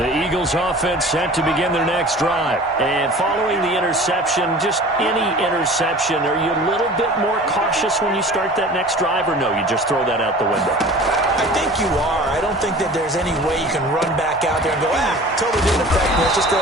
Eagles offense set to begin their next drive. And following the interception, just any interception, are you a little bit more cautious when you start that next drive, or no, you just throw that out the window? I think you are. I don't think that there's any way you can run back out there and go, totally didn't affect me. Let's just go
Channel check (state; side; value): normal; both; correlation 0.42